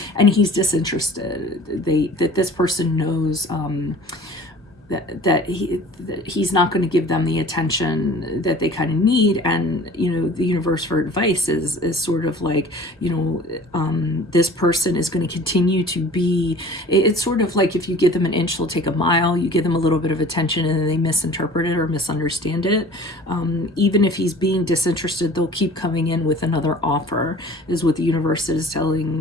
And he's disinterested. That this person knows that he's not going to give them the attention that they kind of need. And the universe for advice is sort of like, this person is going to continue to be, it's sort of like if you give them an inch they'll take a mile. You give them a little bit of attention and then they misinterpret it or misunderstand it. Even if he's being disinterested, they'll keep coming in with another offer, is what the universe is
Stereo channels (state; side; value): normal; both; correlation 0.45